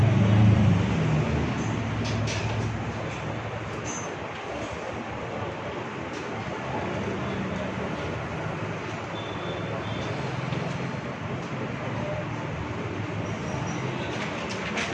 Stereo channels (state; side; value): identical; both; correlation 1.00